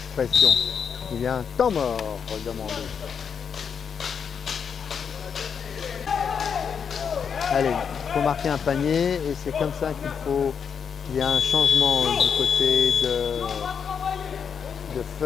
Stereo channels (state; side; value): quieter; right; 6.9 dB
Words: Il y a un temps mort demandé. Allez, il faut marquer un panier et c'est comme ça qu'il faut. Il y a un changement du côté de